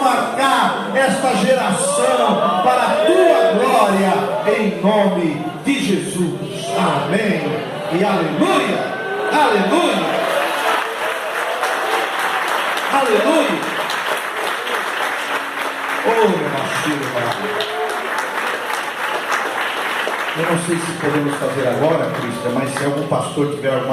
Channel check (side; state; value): both; identical; correlation 1.00